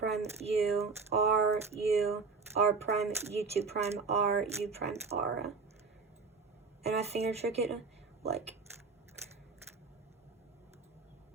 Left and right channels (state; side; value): quieter; left; 4.7 dB